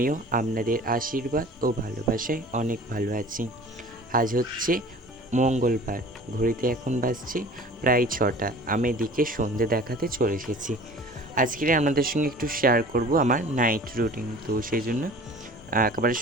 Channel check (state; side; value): normal; both; correlation 0.44